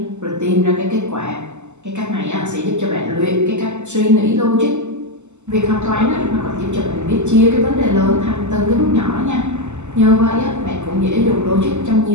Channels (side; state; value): left; late; 0.83 ms